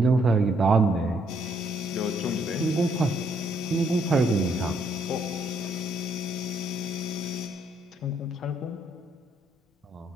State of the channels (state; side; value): normal; both; correlation 0.70